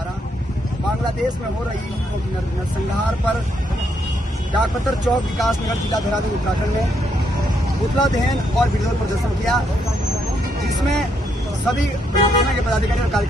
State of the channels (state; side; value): normal; both; correlation 0.75